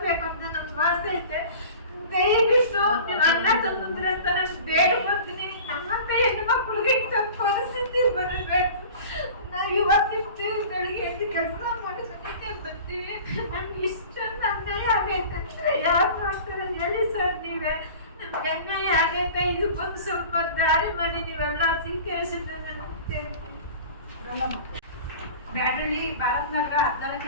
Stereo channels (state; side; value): inverted; both; correlation -0.41